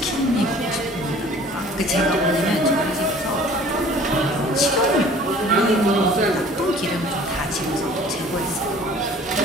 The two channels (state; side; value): normal; both; correlation 0.50